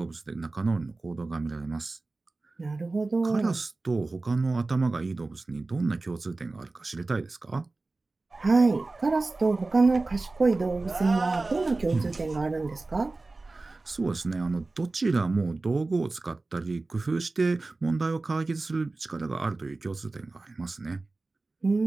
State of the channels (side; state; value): left; quieter; 3.4 dB